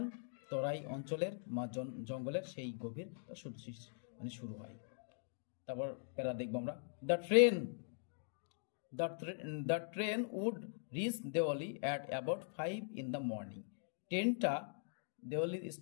তরাই অঞ্চলের জঙ্গলের সেই গভীর মানে শুরু হয়। তারপর প্যারা দেখবো আমরা, the train would reach Deoli at about 5 in the morning। ট্রেনটা দেওয়ালি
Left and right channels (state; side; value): silent; right; digital silence